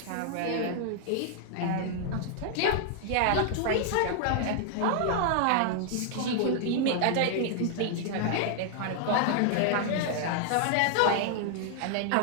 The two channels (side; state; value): both; different; correlation 0.00